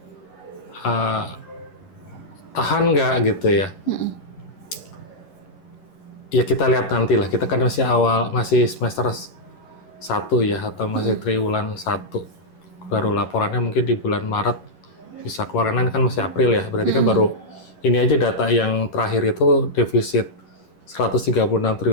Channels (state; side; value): late; right; 11 ms